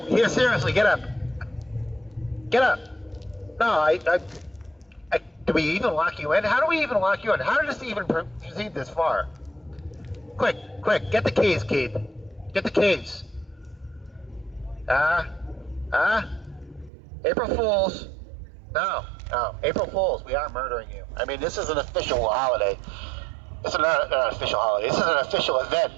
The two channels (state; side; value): drops out; left; at 16.9 s